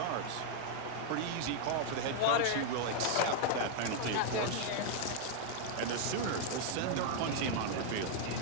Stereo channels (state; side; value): different; both; correlation 0.00